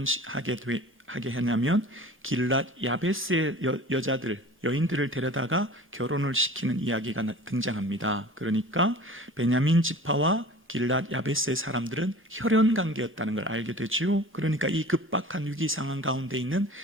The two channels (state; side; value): normal; both; correlation 0.41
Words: 하냐면 길랏 야베스의 여인들을 데려다가 결혼을 시키는 이야기가 등장합니다. 그러니까 베냐민 지파와 길랏 야베스의 사람들은 혈연 관계였다는 걸 알게 되죠. 그러니까 이 급박한 위기 상황 가운데 있는